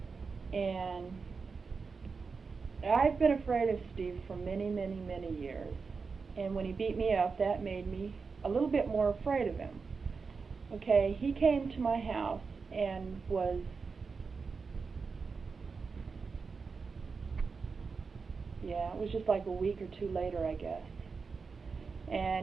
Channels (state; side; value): quieter; left; 4.9 dB